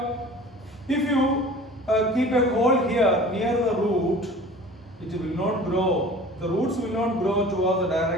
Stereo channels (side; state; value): both; normal; correlation 0.43